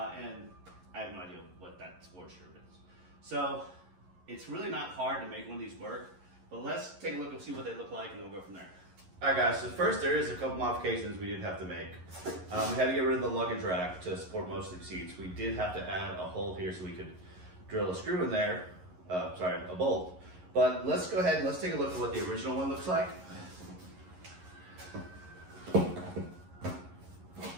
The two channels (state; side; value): late; left; 11 ms